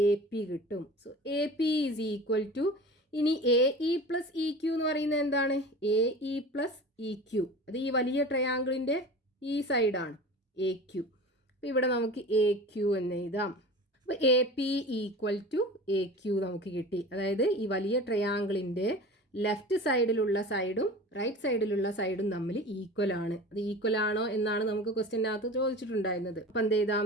എ പി കിട്ടും. So A P is equal to, ഇനി A E plus E Q എന്ന് പറയുന്നത് എന്താണ്? A E plus E Q. അത് ഈ വലിയ ട്രയാങ്കിളിൻ്റെ ഈ സൈഡാണ് എ ക്യു. അപ്പോൾ ഇവിടെ നമുക്ക് എ ക്യു എന്ന് എഴുതാം. അപ്പോൾ A P equal to A Q നമുക്ക് കിട്ടി. അതായത് ഈ വലിയ ട്രയാങ്കിളിൻ്റെ ലെഫ്റ്റ് സൈഡിലുള്ള സൈഡും റൈറ്റ് സൈഡിലുള്ള സൈഡും തമ്മിൽ ഈക്വൽ ആണ്. അത് ഈക്വൽ ആണോ എന്നാണ് നമുക്ക് ക്വസ്റ്റ്യനകത്ത് ചോദിച്ചിട്ടുണ്ടായിരുന്നത്. അപ്പം എന്ത്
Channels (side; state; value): both; normal; correlation 0.36